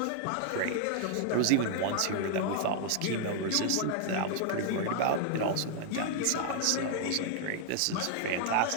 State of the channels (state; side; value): different; both; correlation 0.00